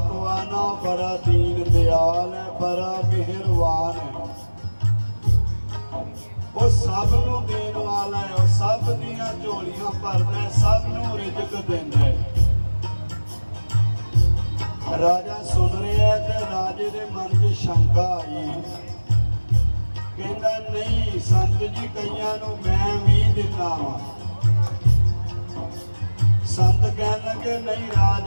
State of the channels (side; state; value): both; inverted; correlation -1.00